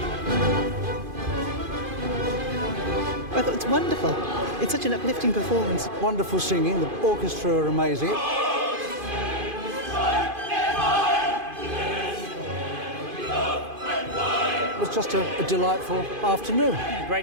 I thought it's wonderful. It's such an uplifting performance. Wonderful singing. The orchestra are amazing. It was just a delightful afternoon.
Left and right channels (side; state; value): left; late; 2.5 ms